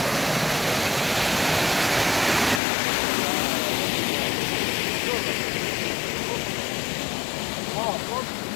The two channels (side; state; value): right; drops out; at 2.6 s